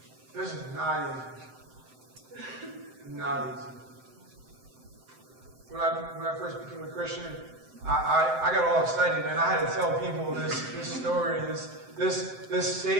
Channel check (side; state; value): left; late; 7.7 ms